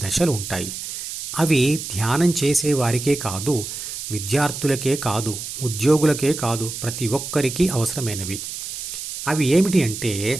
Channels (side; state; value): right; noise; hiss, 7 dB below the sound